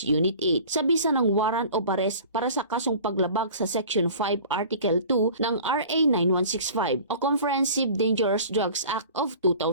Unit 8 sa bisa ng warrant of arrest para sa kasong paglabag sa Section 5 Article 2 ng RA 9165 o Comprehensive Dangerous Drugs Act of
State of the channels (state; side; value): inverted; both; correlation -0.43